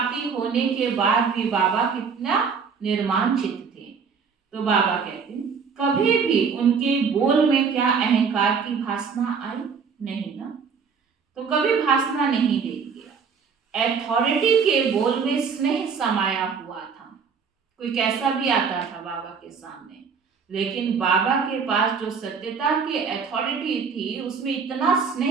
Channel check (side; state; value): left; quieter; 5.9 dB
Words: होने के बाद भी बाबा कितना निर्माण चित्त थे। तो बाबा कहते हैं कभी भी उनके बोल में क्या अहंकार की भासना आई? नहीं ना, तो कभी भासना नहीं देंगे। अथॉरिटी के बोल में स्नेह समाया हुआ था। कोई कैसा भी आता था बाबा के सामने, लेकिन बाबा के पास जो सत्यता की अथॉरिटी थी उसमें इतना